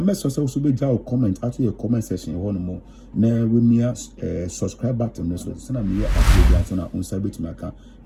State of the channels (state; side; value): identical; both; correlation 1.00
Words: se so beja o comment ato your comment section ho no mo na we mia subscribe button no so na me upload so na unsa betimi aka